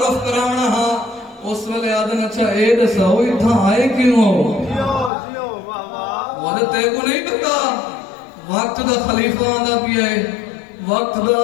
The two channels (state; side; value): drops out; right; at 5.1 s